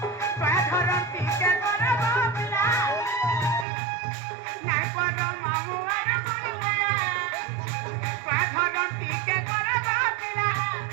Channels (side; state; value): left; drops out; at 3.7 s